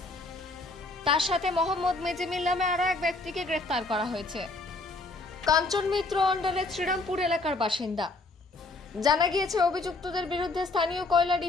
তার সাথে মোহাম্মদ মেজিমিল নামে আরও এক ব্যক্তিকে গ্রেফতার করা হয়েছে। কাঞ্চন মিত্র অন্ডালের শ্রীরামপুর এলাকার বাসিন্দা। জানা গিয়েছে, অভিযুক্তদের বিরুদ্ধে স্থানীয় কয়লা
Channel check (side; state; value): right; quieter; 3.2 dB